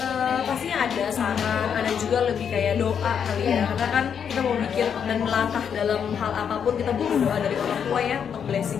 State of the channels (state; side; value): quieter; right; 7.6 dB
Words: Pastinya ada saran, ada juga lebih kayak doa kali ya, karena kan kita mau bikin dan melangkah dalam hal apapun kita butuh doa dari orang tua ya, untuk